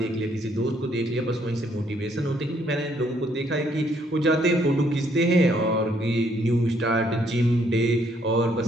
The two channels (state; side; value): normal; both; correlation 0.68